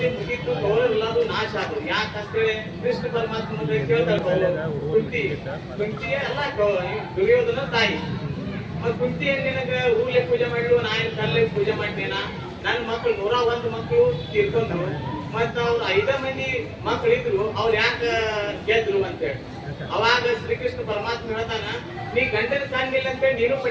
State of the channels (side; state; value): both; identical; correlation 1.00